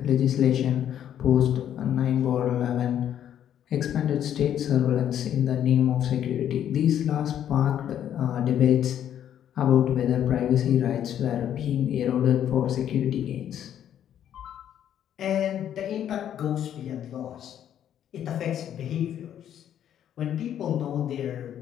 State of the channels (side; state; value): right; quieter; 10.2 dB